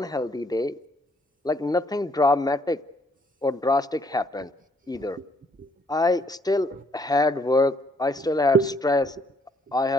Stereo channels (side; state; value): both; normal; correlation 0.67